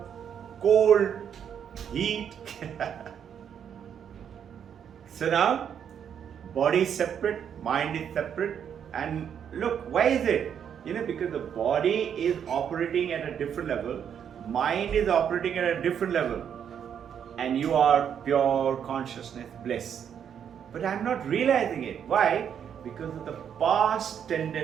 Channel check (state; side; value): quieter; left; 8.4 dB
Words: cold, heat. So now, body is separate, mind is separate. And look, why is it? Because the body is operating at a different level, mind is operating at a different level, and you are pure consciousness, bliss. But I'm not realizing it. Why? Because of the past